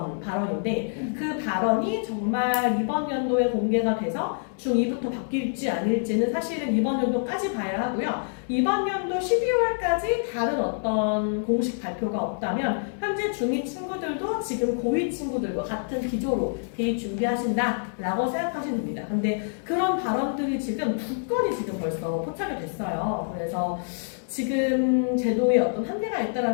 발언인데 그 발언이 정말 이번 연도에 공개가 돼서 중2부터 바뀔지 아닐지는 사실은 이번 연도까지 봐야 하고요. 이번 연도 12월까지 다른 어떤 공식 발표가 없다면 현재 중2 친구들도 지금 고2 친구들과 같은 기조로 대입 준비하신다라고 생각하시면 됩니다. 근데 그런 발언들이 지금 2건이 지금 벌써 포착이 됐어요. 그래서 지금 제도에 어떤 한계가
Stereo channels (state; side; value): silent; right; 61 dB below the other